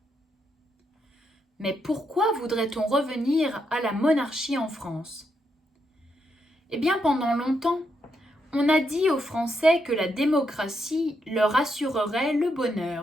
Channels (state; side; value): normal; both; correlation 0.80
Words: Mais pourquoi voudrait-on revenir à la monarchie en France? Eh bien, pendant longtemps, on a dit aux Français que la démocratie leur assurerait le